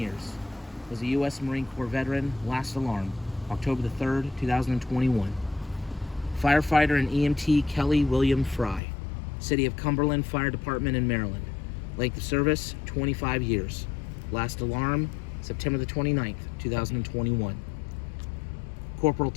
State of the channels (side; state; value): right; drops out; at 8.8 s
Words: Was a U.S. Marine Corps veteran. Last alarm, October the 3rd, 2021. Firefighter and EMT Kelly William Fry, City of Cumberland Fire Department in Maryland. Length of service, 25 years. Last alarm, September the 29th, 2021. Corporal